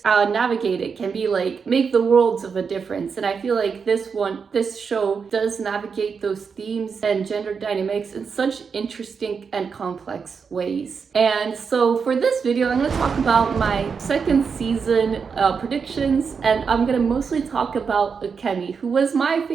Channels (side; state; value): left; quieter; 5.8 dB